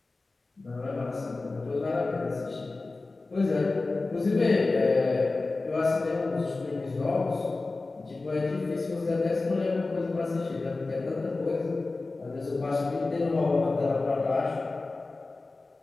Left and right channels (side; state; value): right; quieter; 3.4 dB